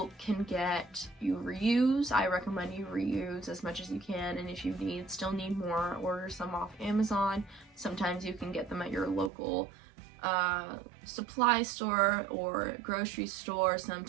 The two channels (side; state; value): left; drops out; at 9.3 s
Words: reuse. I recommend you reuse as much as you can, and if you still need more, order some off Amazon. Sometimes you can get them at your local supply store or grocery store,